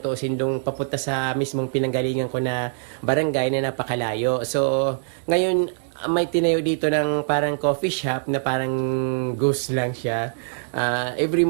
dong papunta sa mismong pinanggalingan ko na barangay na napakalayo. So ngayon may tinayo dito ng parang coffee shop na parang ghost lang siya. Every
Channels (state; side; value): silent; left; digital silence